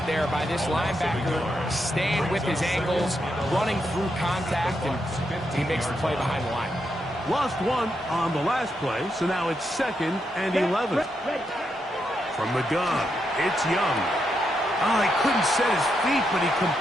there by this linebacker, staying with his angles, running through contact, and he makes the play behind the line. Lost one on the last play, so now it's 2nd and 11. From the gun, it's Young. Oh, he couldn't set his feet, but he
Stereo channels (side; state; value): both; normal; correlation 0.82